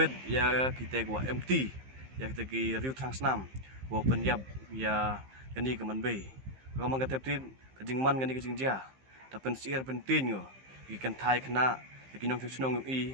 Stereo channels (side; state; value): left; late; 15 ms